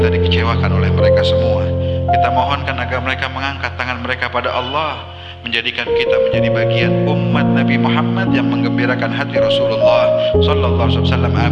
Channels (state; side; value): identical; both; correlation 1.00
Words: dikecewakan oleh mereka semua. Kita mohonkan agar mereka mengangkat tangan mereka pada Allah, menjadikan kita menjadi bagian umat Nabi Muhammad yang menggembirakan hati Rasulullah sallallahu alaihi wasallam.